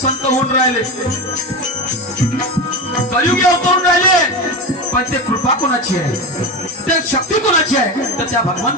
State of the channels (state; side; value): normal; both; correlation 0.21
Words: होऊन राहिले, कलियुगी अवतरून राहिले, पण ते कृपा कोणाची आहे, ते शक्ती कोणाची आहे? तर त्या